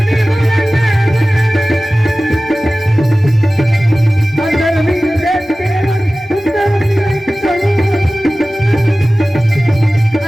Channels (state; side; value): normal; both; correlation 0.97